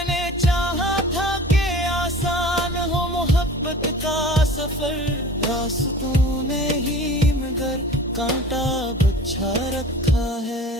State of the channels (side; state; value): both; normal; correlation 0.41